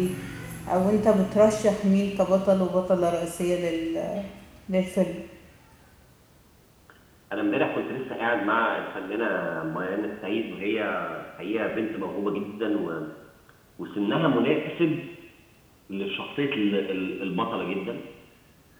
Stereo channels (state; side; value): identical; both; correlation 1.00